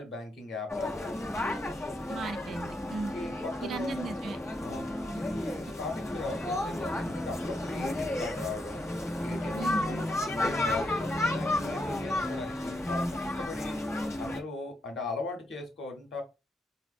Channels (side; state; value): both; normal; correlation 0.80